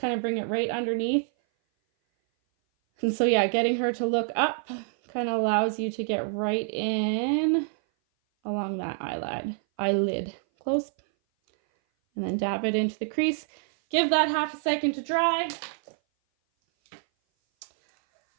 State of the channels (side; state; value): left; silent; 57 dB below the other